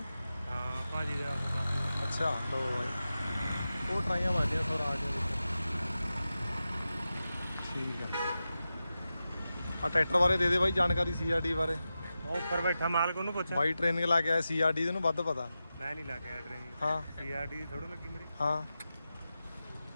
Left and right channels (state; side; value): inverted; both; correlation -0.92